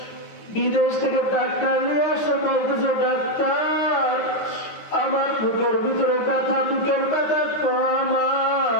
বিদেশ থেকে ডাক্তার নিয়ে আসে, বলতেছে ডাক্তার আমার বুকের ভিতরে ব্যথা, বুকের ব্যথা কমা,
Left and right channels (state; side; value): late; right; 9.5 ms